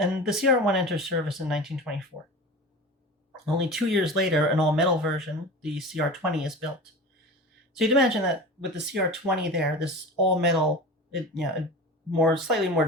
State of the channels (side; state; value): both; normal; correlation 0.32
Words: the CR1 enters service in 1924. Only 2 years later, an all-metal version, the CR20, is built. So you'd imagine that with the CR20 there, this all-metal, slightly more